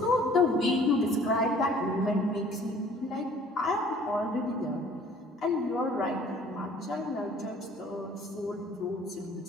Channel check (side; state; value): both; normal; correlation 0.53